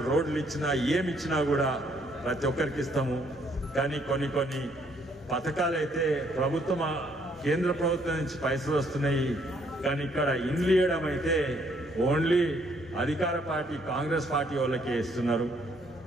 రోడ్లు ఇచ్చినా, ఏమిచ్చినా కూడా ప్రతి ఒక్కరికి ఇస్తాము. కానీ కొన్ని పథకాలు అయితే కేంద్ర ప్రభుత్వం నుంచి పైసలు వస్తున్నాయి, కానీ ఇక్కడ ఇండ్లు ఇవ్వడం అయితే ఓన్లీ అధికార పార్టీ కాంగ్రెస్ పార్టీ వాళ్ళకే ఇస్తున్నారు.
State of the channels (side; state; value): both; normal; correlation 0.67